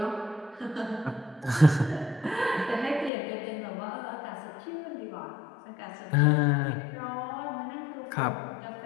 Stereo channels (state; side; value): drops out; right; at 3.1 s